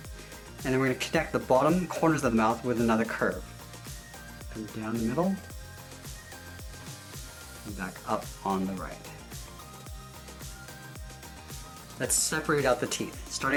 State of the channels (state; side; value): identical; both; correlation 1.00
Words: And then we're going to connect the bottom corners of the mouth with another curve. Come down the middle, and back up on the right. Let's separate out the teeth.